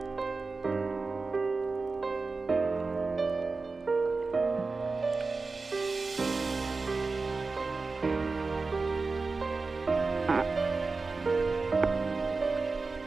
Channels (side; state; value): left; quieter; 4.0 dB